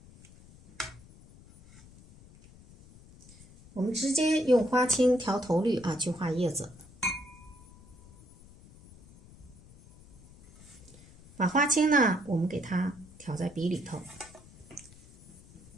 我们直接用花青调头绿啊去画叶子，把花青呢我们给它调在笔里头。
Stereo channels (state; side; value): noise; left; rumble, 23 dB below the sound